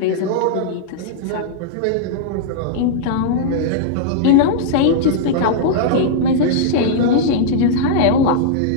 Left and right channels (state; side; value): different; both; correlation -0.02